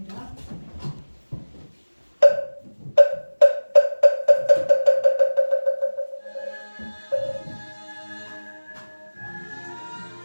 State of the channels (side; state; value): both; inverted; correlation -1.00